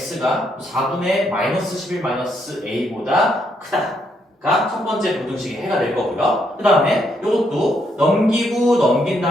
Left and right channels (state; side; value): normal; both; correlation 0.75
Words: 4분의 마이너스 11 마이너스 a보다 크다가 첫 번째 부등식의 해가 될 거고요. 그 다음에 이것도 넘기고 넘긴